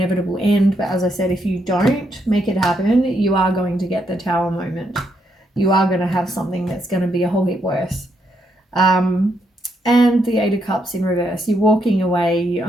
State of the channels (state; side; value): normal; both; correlation 0.78